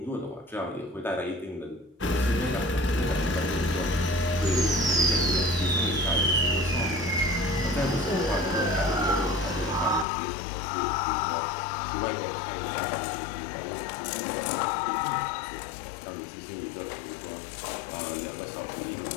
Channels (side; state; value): right; drops out; at 10.1 s